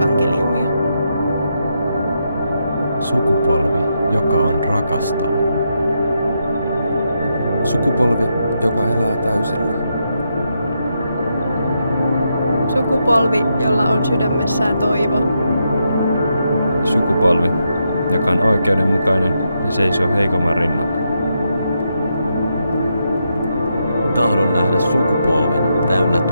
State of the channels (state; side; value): inverted; both; correlation -0.82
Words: Sukupolvi, joka on rakastava. Sukupolvi, joka elää täysillä. Sukupolvi, jolla on sydämessään toivo. Sukupolvi, joka on oikeudenmukainen ja seisoo heikomman rinnalla. Tahdon nähdä sukupolven täynnä